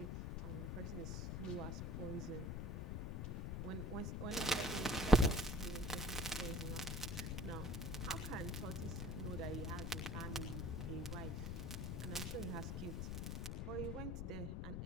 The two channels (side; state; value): left; noise; rumble, 2 dB below the sound